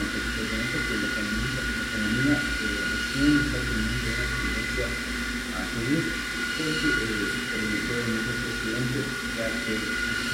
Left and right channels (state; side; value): identical; both; correlation 1.00